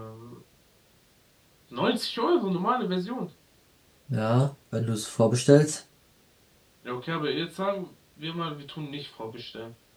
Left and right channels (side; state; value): both; identical; correlation 1.00